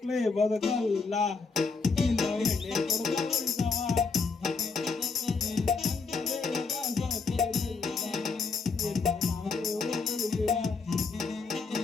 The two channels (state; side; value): quieter; right; 4.6 dB